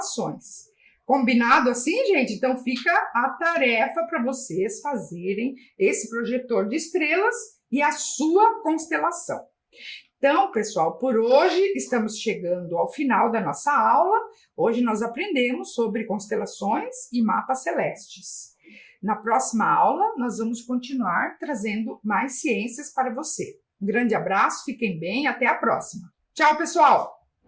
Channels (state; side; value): identical; both; correlation 1.00